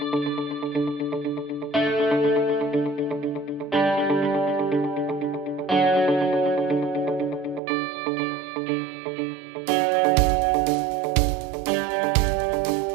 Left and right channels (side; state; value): left; drops out; at 7.6 s